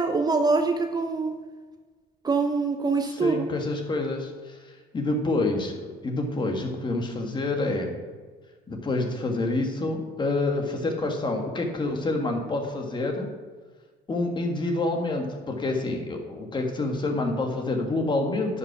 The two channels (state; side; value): normal; both; correlation 0.61